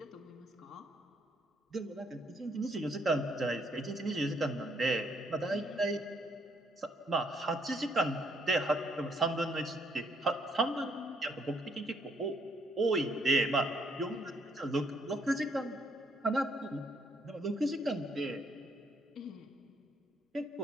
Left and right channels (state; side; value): normal; both; correlation 0.70